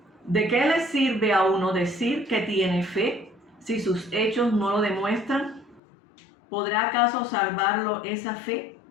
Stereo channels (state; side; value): drops out; right; at 5.8 s